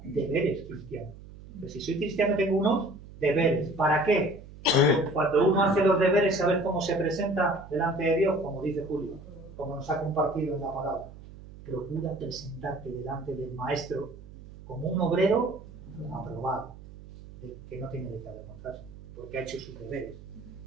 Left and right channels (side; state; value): right; noise; hum, 17 dB below the sound